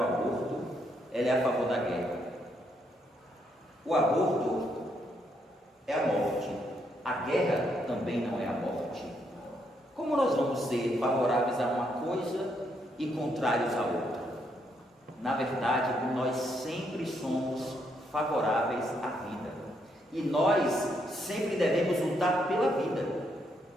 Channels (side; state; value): both; normal; correlation 0.75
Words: aborto, ela é a favor da guerra. O aborto é a morte, a guerra também não é a morte. Como nós vamos ser favoráveis a uma coisa e contrários a outra? Na verdade, nós sempre somos favoráveis à vida, e nós sempre devemos lutar pela vida,